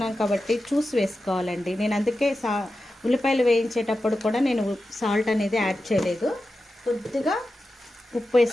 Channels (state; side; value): normal; both; correlation 0.92